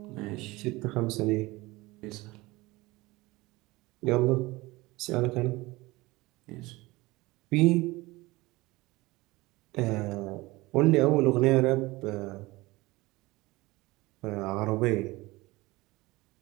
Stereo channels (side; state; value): left; quieter; 21.2 dB